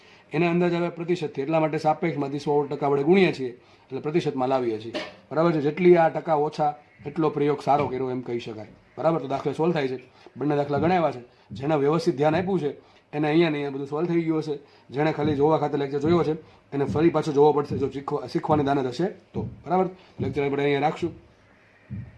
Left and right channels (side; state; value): both; identical; correlation 1.00